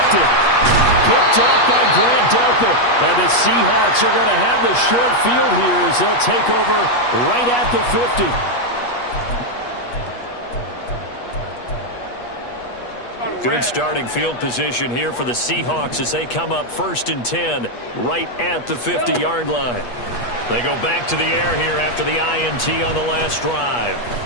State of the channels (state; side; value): late; right; 8.3 ms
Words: Picked off by Grant Delpit. And the Seahawks are going to have the short field here as they'll take over right at the 50. Good starting field position here for the Seahawks as they come up 1st and 10 right at the 50-yard line. They go back to the air here after the INT on the last drive.